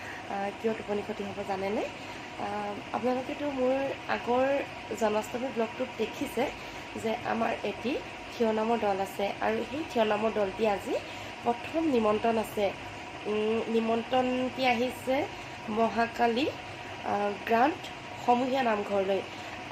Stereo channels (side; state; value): both; identical; correlation 1.00